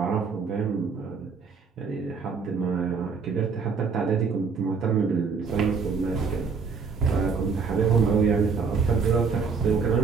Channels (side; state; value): left; quieter; 5.4 dB